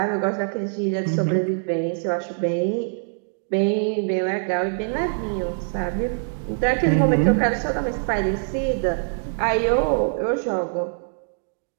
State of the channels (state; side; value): silent; left; digital silence